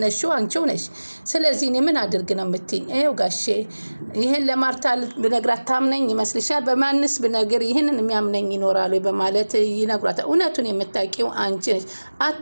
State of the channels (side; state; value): both; inverted; correlation -1.00